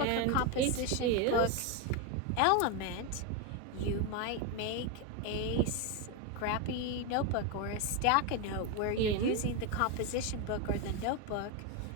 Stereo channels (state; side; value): different; both; correlation 0.03